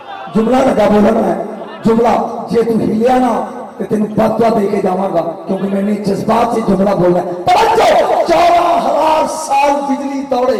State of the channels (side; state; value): both; identical; correlation 1.00